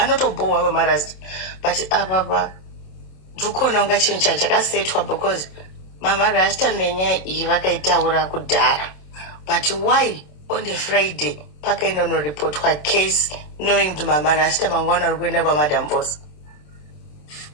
Mama Rasta. But apa ndikona unga chinhu chakasetwa because Mama Rasta nenyaya iyi vakaitaura kudhara. But why on the Friday pakainonoripotwa case knowing kuti Mama Rasta mangwana ari kuenda kwaMadam Boss?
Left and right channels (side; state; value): right; late; 27 ms